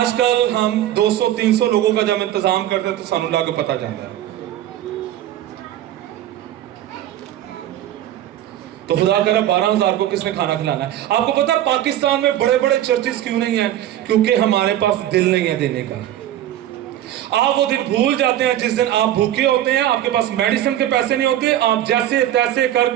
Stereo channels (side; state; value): left; quieter; 12.5 dB